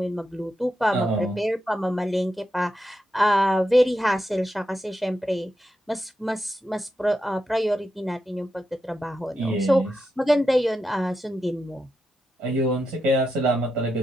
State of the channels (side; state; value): both; normal; correlation 0.86